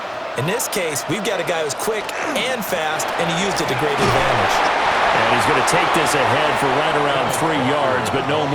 In this case, we've got a guy who's quick and fast, and he used it to great advantage. And he's going to take this ahead for right around 3 yards, but no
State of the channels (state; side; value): identical; both; correlation 1.00